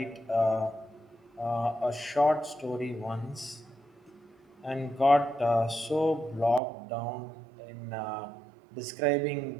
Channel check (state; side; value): drops out; left; at 6.6 s